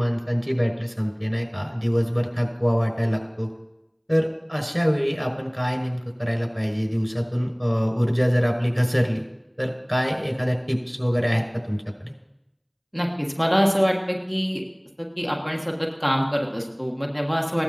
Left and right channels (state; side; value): identical; both; correlation 1.00